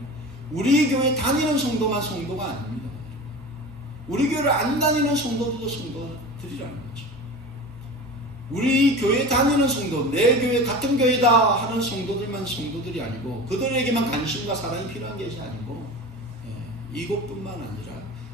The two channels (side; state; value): both; normal; correlation 0.33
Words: 우리 교회 다니는 성도만 성도가 아닙니다. 우리 교회를 안 다니는 성도들도 성도들이라는 거죠. 우리 교회 다니는 성도, 내 교회 같은 교회다 하는 성도들만 성도들이 아니고, 그들에게만 관심과 사랑이 필요한 것이 아니고, 이곳뿐만 아니라